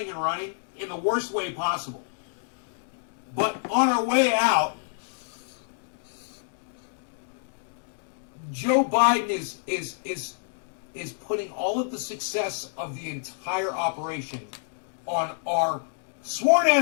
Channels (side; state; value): right; silent; digital silence